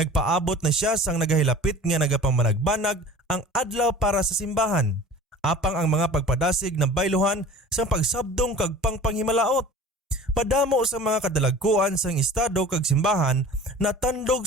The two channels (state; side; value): normal; both; correlation 0.42